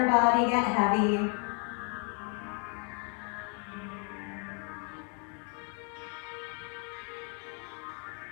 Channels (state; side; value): quieter; right; 35.4 dB